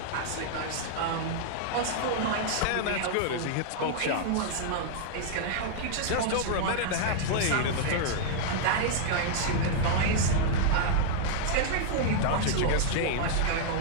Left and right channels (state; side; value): different; both; correlation -0.01